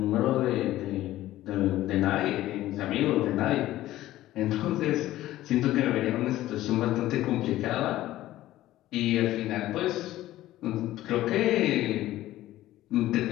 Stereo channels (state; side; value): quieter; right; 15.1 dB